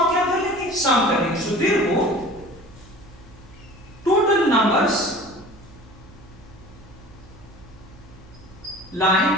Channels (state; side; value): noise; right; hum, 24 dB below the sound